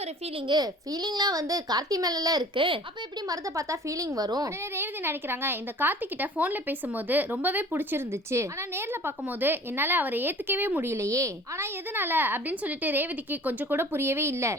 ஒரு ஃபீலிங்லாம் வந்து கார்த்தி மேல இருக்கு, அப்ப எப்படி மருத பார்த்தா ஃபீலிங் வரும்? உடனே ரேவதி நினைக்கிறாங்க, இந்த கார்த்தி கிட்ட போன்ல பேசும்போது ரொம்பவே பிடிச்சிருந்துச்சு, ஆனா நேர்ல பார்க்கும்போது என்னால அவரை ஏத்துக்கவே முடியலையே, ஆனா எதனால அப்படின்னு சொல்லிட்டு ரேவதிக்கு கொஞ்சம் கூட புரியவே இல்ல.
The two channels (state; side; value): normal; both; correlation 0.47